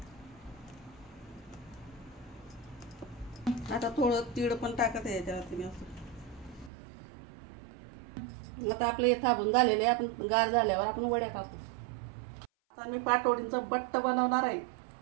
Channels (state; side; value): drops out; left; at 6.7 s